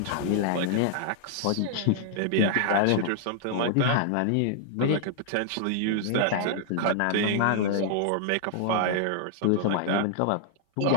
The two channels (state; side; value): different; both; correlation -0.01